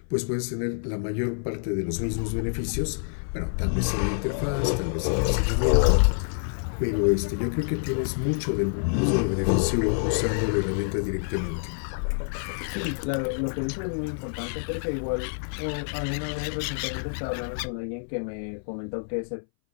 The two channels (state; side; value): silent; right; 60 dB below the other